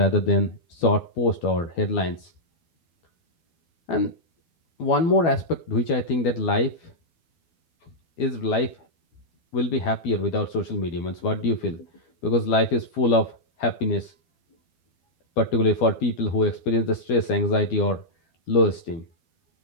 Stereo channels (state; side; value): late; right; 12 ms